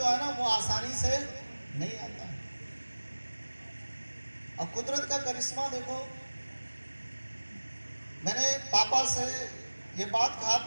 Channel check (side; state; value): both; inverted; correlation -1.00